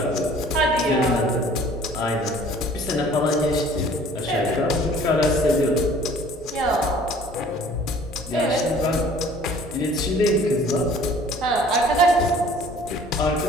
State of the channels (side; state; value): both; normal; correlation 0.51